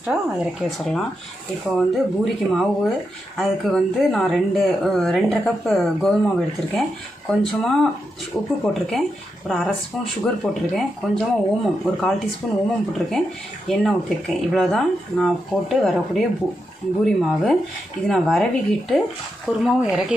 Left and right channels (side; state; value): both; normal; correlation 0.85